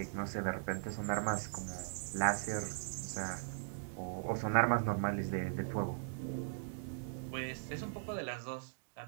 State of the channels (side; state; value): left; silent; digital silence